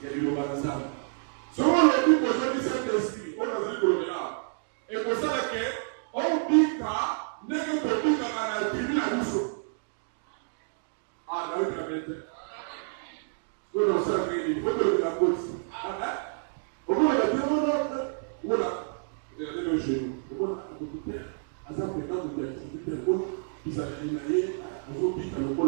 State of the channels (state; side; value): silent; left; digital silence